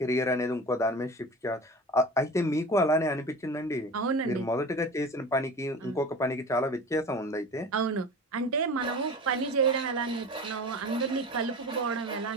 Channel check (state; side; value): normal; both; correlation 0.35